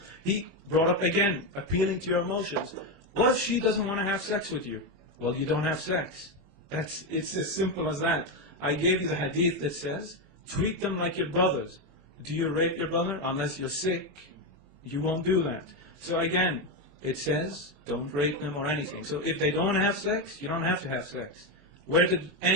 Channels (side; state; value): left; late; 21 ms